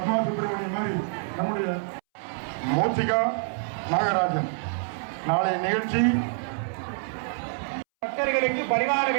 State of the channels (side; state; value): left; silent; 60 dB below the other